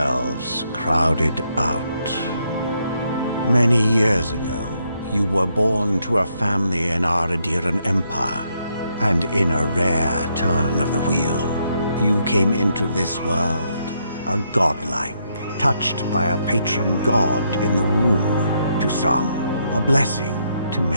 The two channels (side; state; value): both; inverted; correlation -0.76